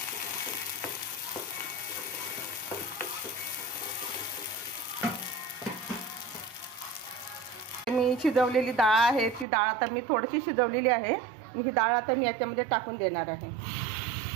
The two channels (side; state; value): left; drops out; at 9.5 s